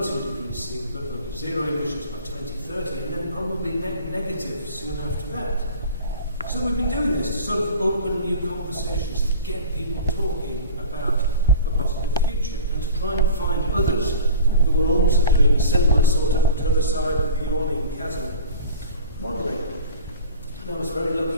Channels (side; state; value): both; inverted; correlation -0.38